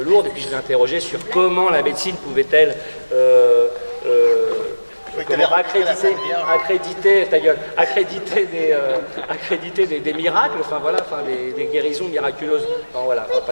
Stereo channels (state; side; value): inverted; both; correlation -1.00